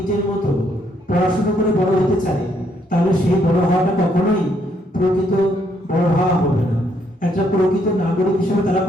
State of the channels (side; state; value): both; normal; correlation 0.71